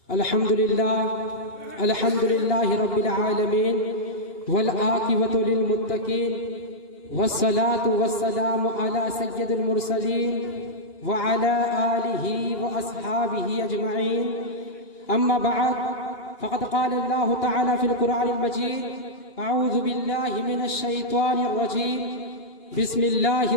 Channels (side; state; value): right; late; 2.8 ms